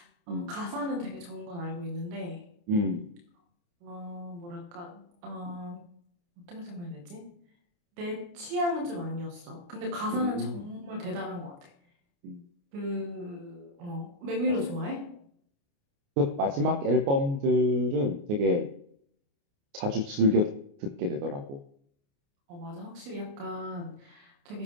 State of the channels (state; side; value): late; left; 29 ms